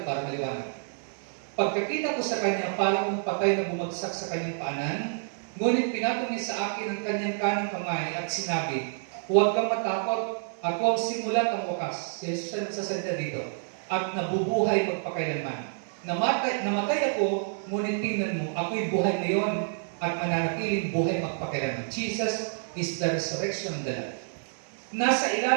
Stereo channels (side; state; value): left; silent; digital silence